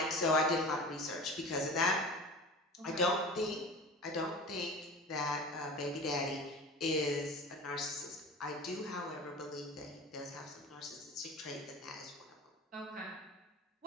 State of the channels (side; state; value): both; normal; correlation 0.35